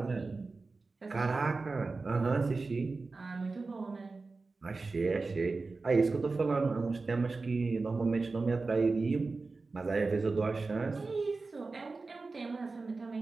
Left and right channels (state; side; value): quieter; left; 3.9 dB